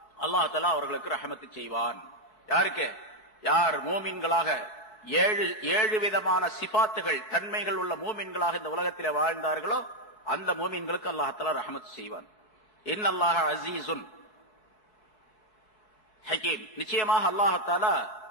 அல்லாஹ்தாலா அவர்களுக்கு ரஹமத்து செய்வான். யாருக்கு? யார் மூமின்களாக ஏழு விதமான சிபாத்துகள் தன்மைகள் உள்ள மூமின்களாக இந்த உலகத்தில் வாழ்ந்தார்களோ அந்த மூமின்களுக்கு அல்லாஹ்தாலா ரஹமத்து செய்வான். இன்னல்லாஹ அஸீஸுன் ஹகீம், நிச்சயமாக அல்லாஹ்தாலா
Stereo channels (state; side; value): late; right; 4.6 ms